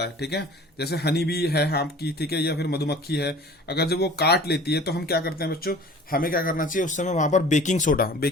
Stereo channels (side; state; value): both; normal; correlation 0.45